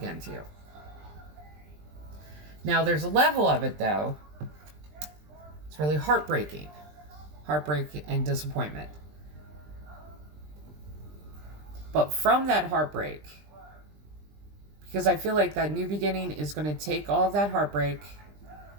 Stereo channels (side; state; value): left; late; 20 ms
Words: to you. Now, there's a level of it, though. It's really heartbreaking. Heartbreak and disappointment. But from that heartbreak, because I feel like that new beginning is going to take all of that heartbreak,